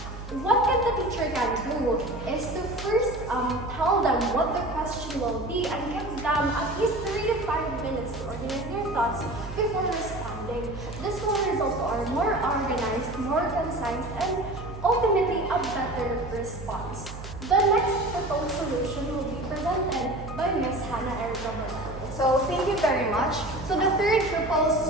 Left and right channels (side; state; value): right; noise; hum, 11 dB below the sound